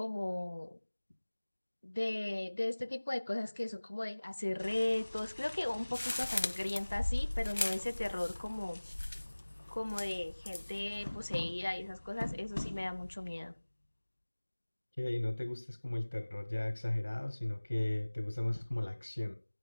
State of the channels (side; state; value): both; inverted; correlation -1.00